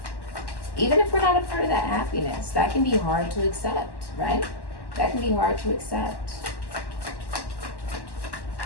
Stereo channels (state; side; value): late; right; 1.1 ms